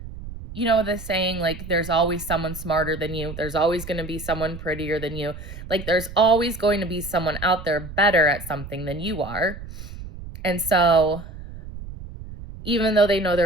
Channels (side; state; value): right; noise; rumble, 12 dB below the sound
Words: the saying, like, there's always someone smarter than you. There's always going to be someone prettier than you. Like, there's always going to be someone out there better at something than you are. And so even though they know